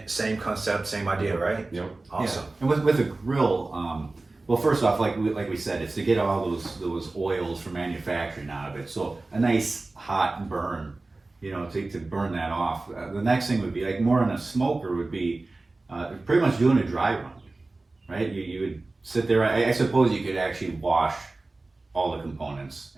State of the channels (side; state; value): left; quieter; 3.2 dB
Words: same concept, same idea, right? Yep. Awesome. Yeah. And with a grill, well, first off, like we said, it's to get all those oils from manufacturing out of it. So a nice hot burn, to burn that off. The next thing would be like more on a smoker would be pretty much doing a dry run, right? You would sit there. I suppose you could actually wash all the components